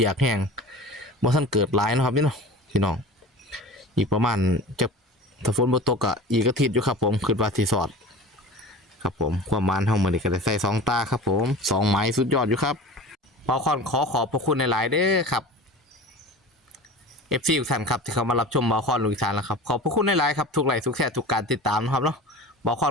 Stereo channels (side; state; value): both; normal; correlation 0.36